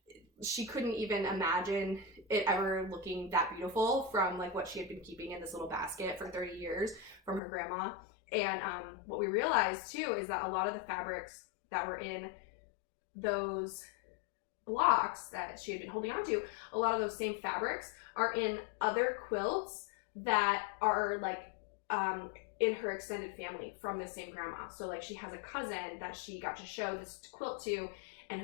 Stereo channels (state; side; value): drops out; right; at 7.4 s